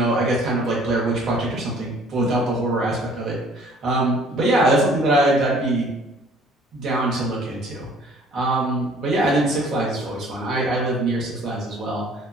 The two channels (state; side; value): normal; both; correlation 0.54